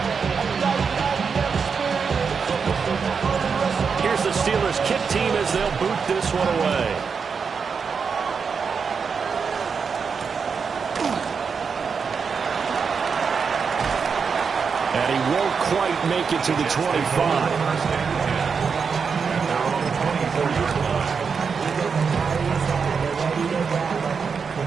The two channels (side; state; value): left; quieter; 5.8 dB